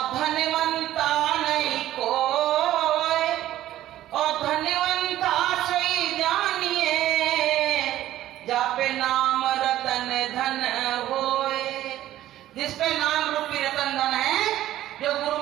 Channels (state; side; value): quieter; left; 13.7 dB